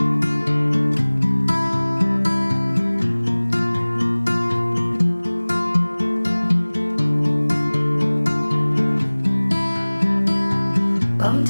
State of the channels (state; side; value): inverted; both; correlation -1.00